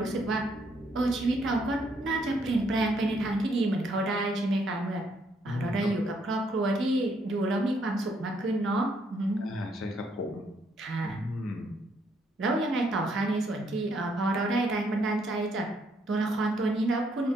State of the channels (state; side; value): normal; both; correlation 0.72